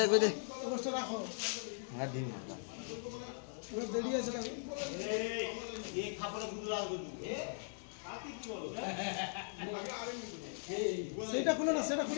কই দে অবস্থা রাখো হ্যাঁ দিন ওরা দেরি আছে না সেটা খুলো না সেটা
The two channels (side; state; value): right; silent; 51 dB below the other